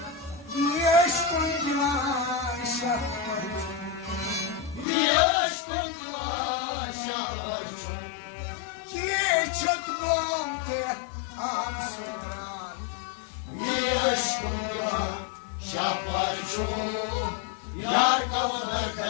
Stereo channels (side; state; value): right; drops out; at 4.9 s